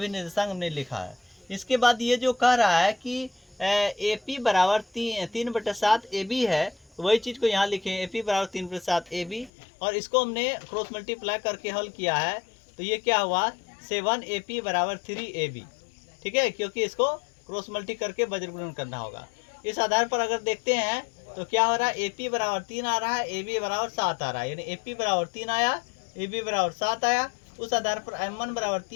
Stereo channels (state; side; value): drops out; right; at 9.5 s